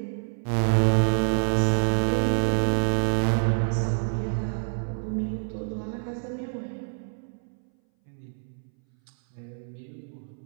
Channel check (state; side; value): silent; left; 60 dB below the other